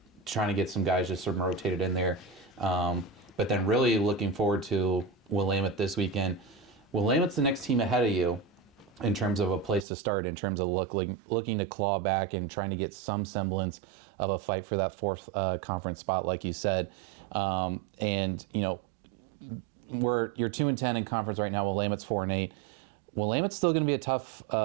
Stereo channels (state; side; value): drops out; left; at 9.9 s